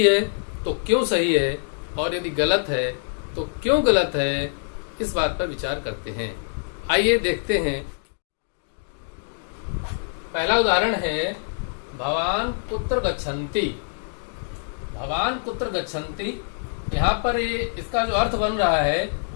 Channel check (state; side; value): silent; right; digital silence